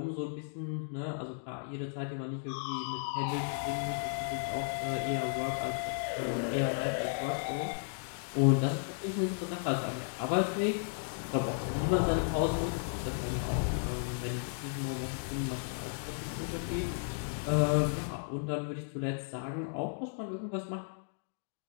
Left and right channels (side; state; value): right; silent; digital silence